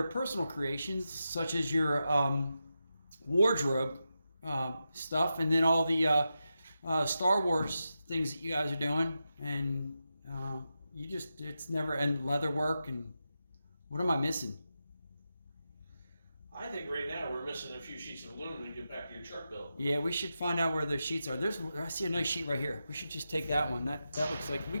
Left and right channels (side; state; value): both; inverted; correlation -0.89